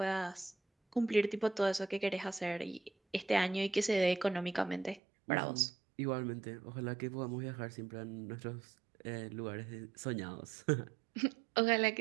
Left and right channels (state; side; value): drops out; left; at 5.0 s